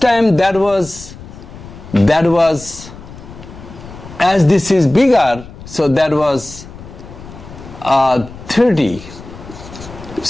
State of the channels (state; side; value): noise; left; rumble, 16 dB below the sound